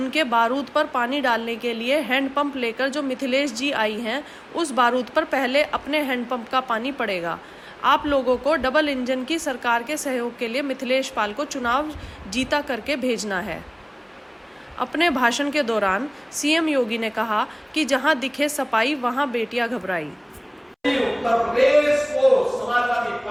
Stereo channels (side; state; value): both; identical; correlation 1.00